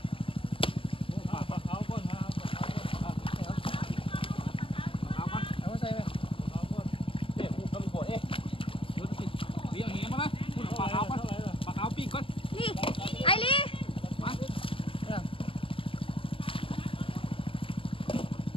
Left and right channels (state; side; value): late; right; 0.25 ms